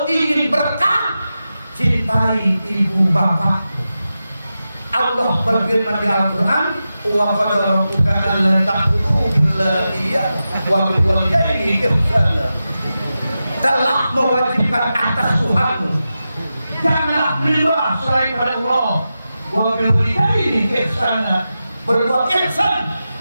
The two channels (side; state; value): both; inverted; correlation -0.92